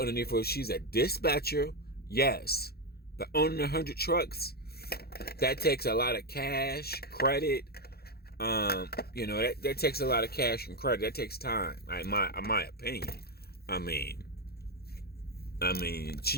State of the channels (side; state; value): right; late; 0.46 ms